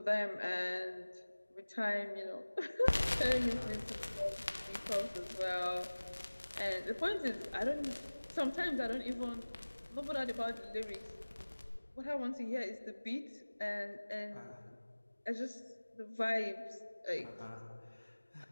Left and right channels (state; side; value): inverted; both; correlation -1.00